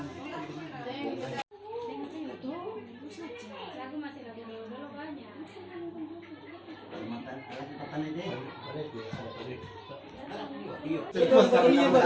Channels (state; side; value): identical; both; correlation 1.00